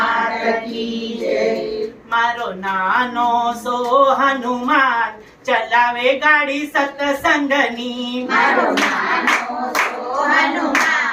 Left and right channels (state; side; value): identical; both; correlation 1.00